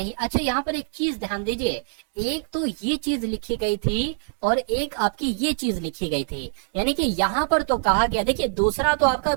अच्छा यहाँ पर एक चीज ध्यान दीजिए, एक तो ये चीज लिखी गई थी और एक आपकी ये चीज लिखी गई थी, यानी कि यहाँ पर तो कहा गया, देखिए दूसरा तो आपका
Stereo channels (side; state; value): left; silent; digital silence